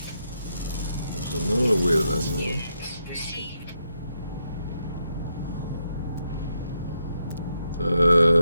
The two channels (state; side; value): inverted; both; correlation -0.82